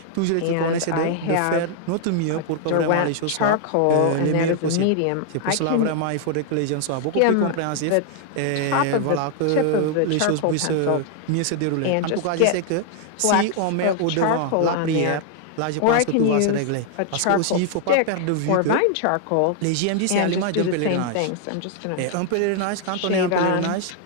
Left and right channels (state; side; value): different; both; correlation 0.00